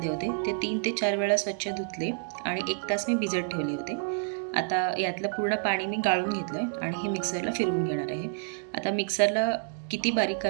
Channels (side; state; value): left; silent; digital silence